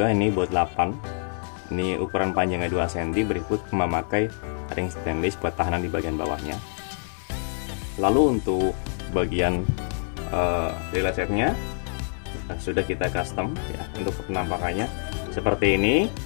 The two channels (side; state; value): right; silent; 61 dB below the other